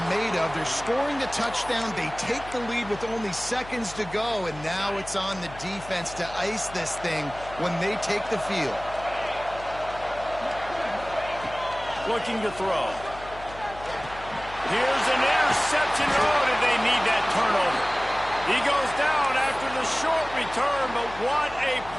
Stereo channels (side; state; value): left; noise; hum, 16 dB below the sound